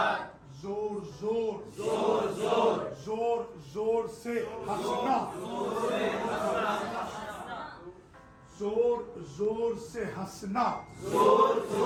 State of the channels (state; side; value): identical; both; correlation 1.00